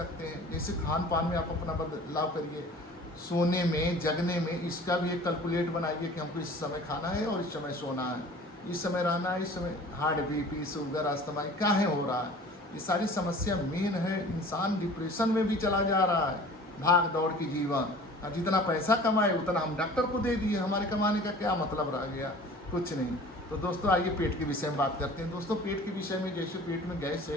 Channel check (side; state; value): both; normal; correlation 0.45